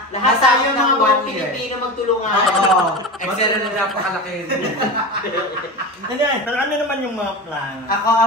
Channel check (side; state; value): both; normal; correlation 0.26